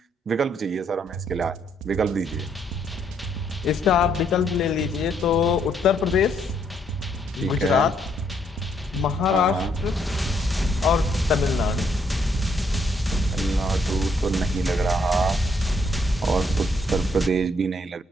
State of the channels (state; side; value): normal; both; correlation 0.71